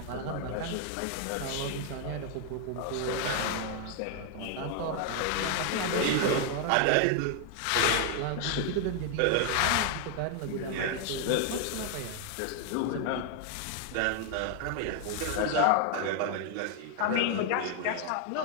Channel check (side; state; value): both; different; correlation 0.00